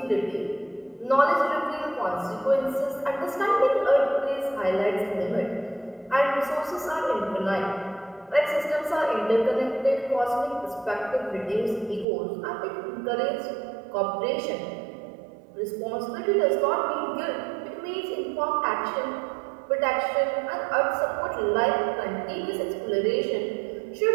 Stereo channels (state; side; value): drops out; left; at 12.1 s